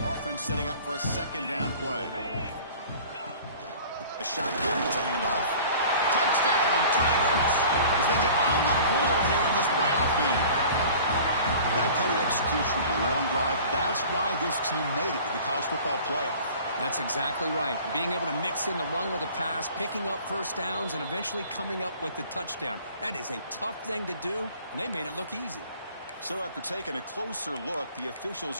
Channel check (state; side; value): inverted; both; correlation -0.45